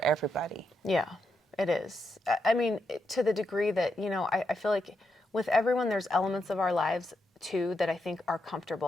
everybody. Yeah, it is. I mean, to the degree that, you know, I feel like with everyone, there's elements of our lives too that I think are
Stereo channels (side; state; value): both; normal; correlation 0.83